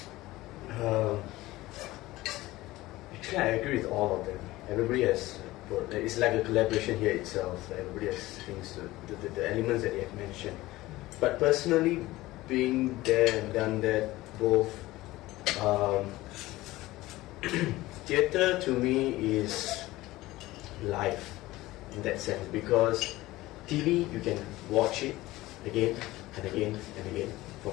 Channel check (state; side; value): quieter; right; 18.1 dB